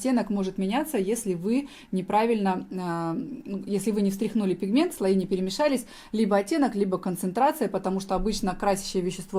может меняться, если вы неправильно, если вы не встряхнули пигмент, слои не перемешались, либо оттенок, либо концентрация, потому что обычно красящее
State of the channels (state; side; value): identical; both; correlation 1.00